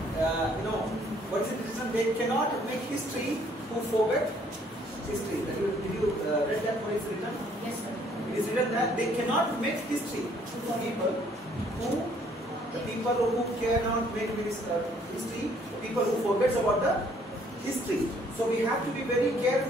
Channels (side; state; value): both; normal; correlation 0.63